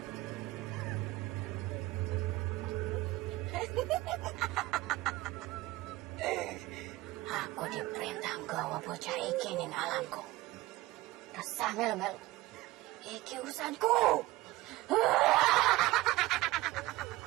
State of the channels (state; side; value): quieter; left; 18.9 dB